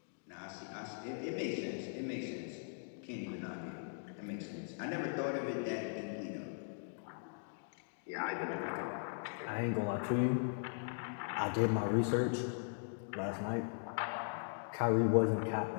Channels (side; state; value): right; silent; digital silence